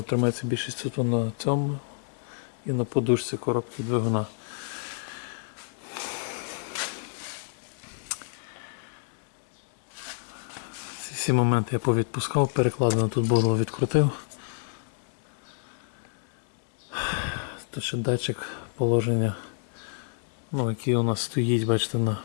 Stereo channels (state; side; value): silent; right; 59 dB below the other